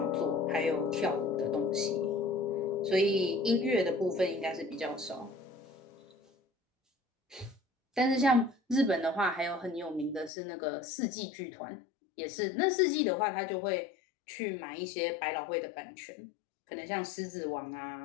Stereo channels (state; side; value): drops out; right; at 10.3 s